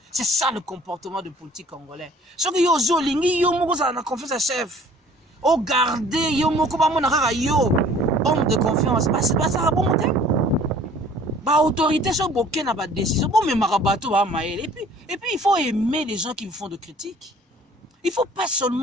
C'est ça le comportement de politique congolais. Ce que yo zo lingi yo moko za na confiance à chef. O garder yo moko ba mona kaka yo homme de confiance. C'est pas ça bon te. Ba autorité so boké na ba décision. Bon mais marabato ba maël. Et puis il faut aimer les gens qui vous font de critiques. Il faut pas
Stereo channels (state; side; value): normal; both; correlation 0.52